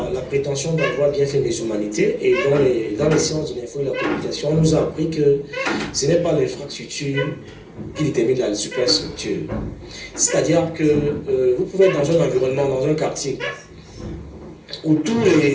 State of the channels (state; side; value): identical; both; correlation 1.00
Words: prétention d'avoir bien fait mes humanités et dans les sciences de l'info et de la communication, on nous a appris que ce n'est pas l'infrastructure qui détermine la superstructure. C'est-à-dire que vous pouvez être dans un environnement, dans un quartier, où tous